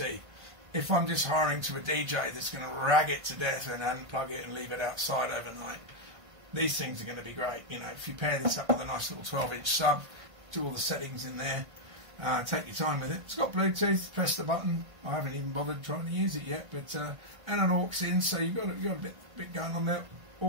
If I'm just hiring to a DJ that's going to rag it to death and unplug it and leave it outside overnight, these things are going to be great. You know, if you pair this up with a nice little 12-inch sub, do all the settings in there, take your time with it. It's got Bluetooth, press the button. I haven't even bothered trying to use it yet, but and an aux in, so you've got a bit going on there.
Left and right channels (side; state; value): left; late; 1.6 ms